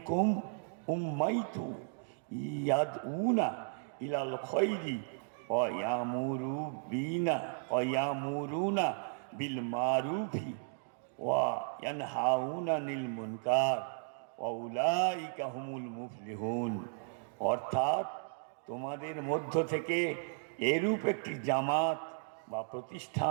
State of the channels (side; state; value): left; silent; digital silence